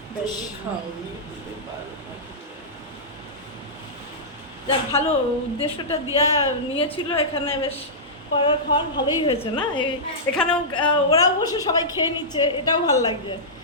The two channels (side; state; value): both; normal; correlation -0.14